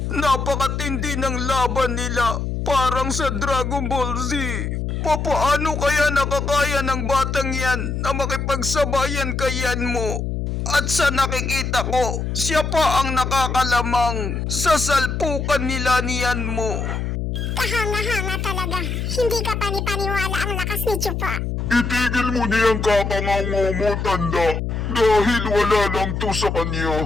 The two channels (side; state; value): left; noise; hum, 2 dB below the sound